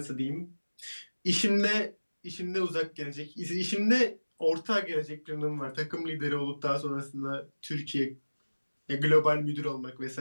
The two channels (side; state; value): both; inverted; correlation -1.00